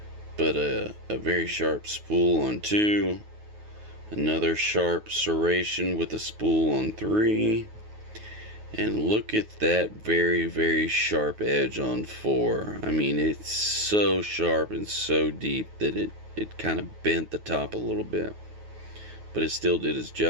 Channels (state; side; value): late; left; 9.4 ms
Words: But a very sharp spool on 2. Another sharp serration with a spool on 3. And look at that very, very sharp edge on 4. I mean, it's so sharp and so deep that it kind of bent the top a little bit. But it still did its